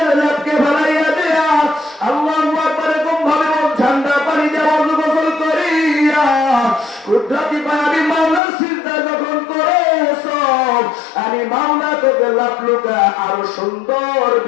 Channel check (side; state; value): right; drops out; at 8.4 s